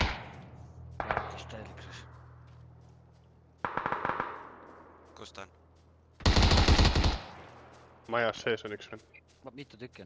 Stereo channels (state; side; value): identical; both; correlation 1.00